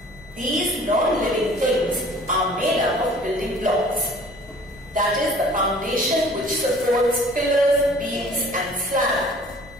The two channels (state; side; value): noise; left; rumble, 23 dB below the sound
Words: These non-living things are made up of building blocks. That is the foundation which supports pillars, beams and slab.